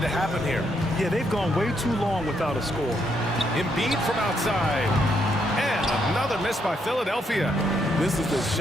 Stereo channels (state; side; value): normal; both; correlation 0.76